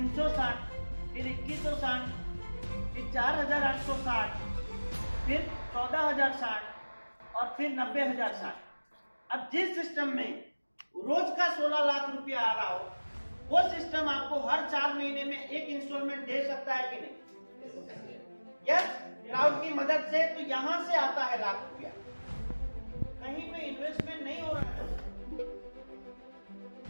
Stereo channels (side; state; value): both; inverted; correlation -1.00